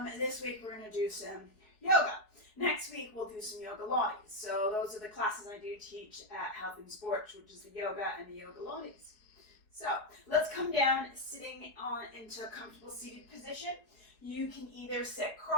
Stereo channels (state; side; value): late; right; 4.8 ms